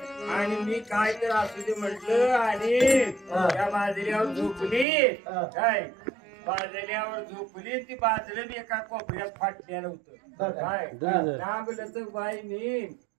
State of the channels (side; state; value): left; drops out; at 4.9 s